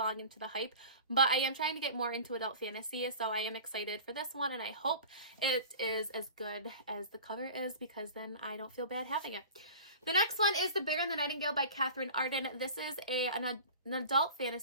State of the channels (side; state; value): both; inverted; correlation -0.38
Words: into the hype, but I am trying to get more into adult fantasy, so I am excited for this one, and I hope it is as good as the cover is, because then I don't feel bad having it. The next one is The Bear and the Nightingale by Catherine Arden. This is an adult